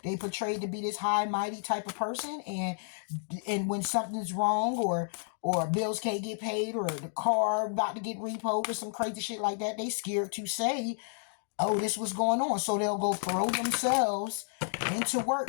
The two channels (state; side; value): silent; right; digital silence